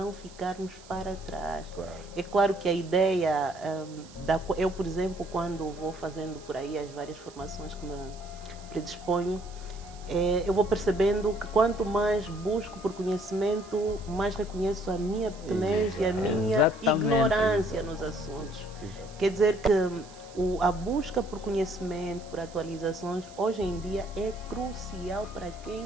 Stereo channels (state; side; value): noise; right; hiss, 22 dB below the sound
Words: ficarmos para trás. Claro. É claro que a ideia, eu, por exemplo, quando vou fazendo por aí as várias formações que me predisponho, eu vou percebendo que quanto mais busco por conhecimento, mais reconheço a minha pequenez e a minha ignorância nos assuntos. Quer dizer que a busca por conhecimento, por atualizações, hoje em dia é crucial para